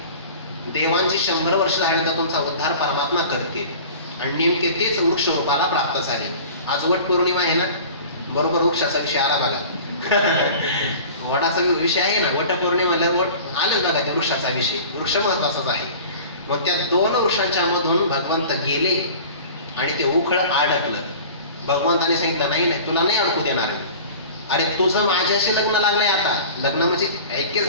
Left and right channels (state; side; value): inverted; both; correlation -0.40